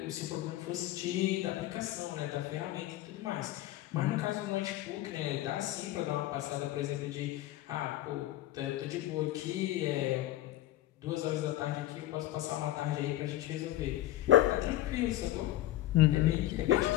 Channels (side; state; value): right; quieter; 14.8 dB